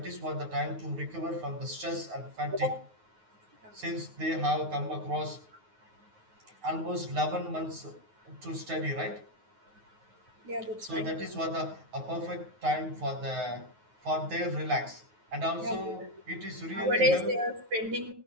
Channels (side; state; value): left; late; 9.4 ms